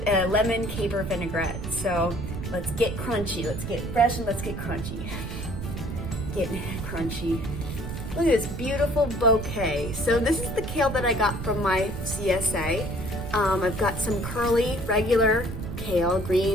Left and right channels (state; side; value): noise; right; rumble, 7 dB below the sound